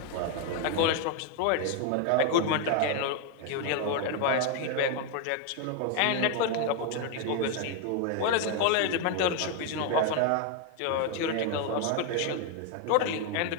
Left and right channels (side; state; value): both; different; correlation 0.01